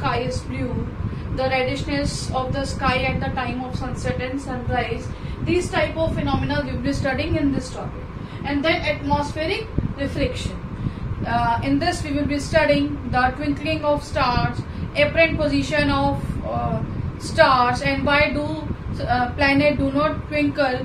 is blue, the reddishness of the sky at the time of sunset and sunrise. These type of phenomena we will be studying in this topic. And then atmospheric reflection. In this we will be studying the twinkling of stars, apparent position of stars, and why do planet do not twinkle.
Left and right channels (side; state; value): both; identical; correlation 1.00